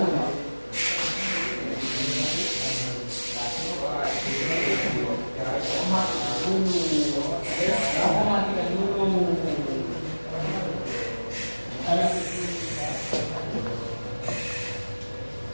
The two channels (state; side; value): inverted; both; correlation -1.00